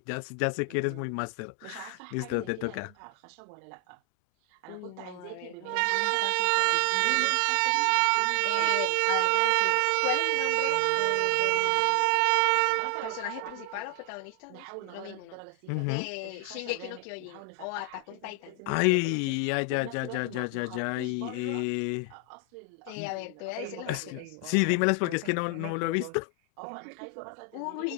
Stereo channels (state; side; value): different; both; correlation 0.00